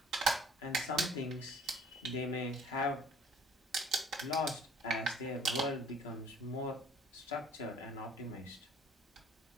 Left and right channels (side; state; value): both; normal; correlation 0.54